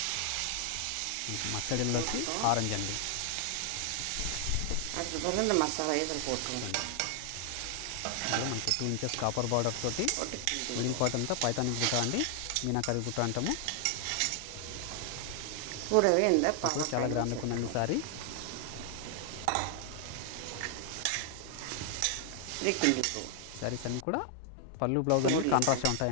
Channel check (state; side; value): different; both; correlation 0.00